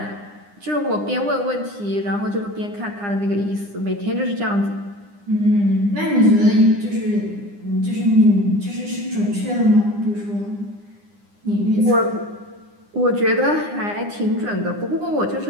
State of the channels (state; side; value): late; left; 9.8 ms